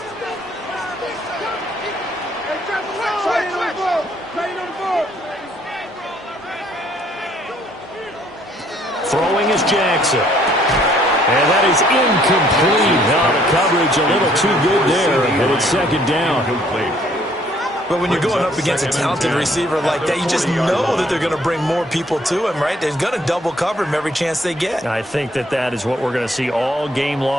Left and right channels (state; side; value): normal; both; correlation 0.63